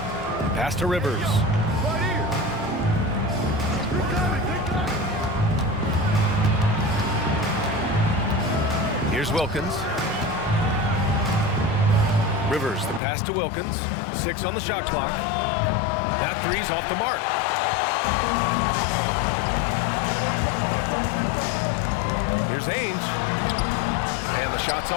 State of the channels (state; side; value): drops out; right; at 13.0 s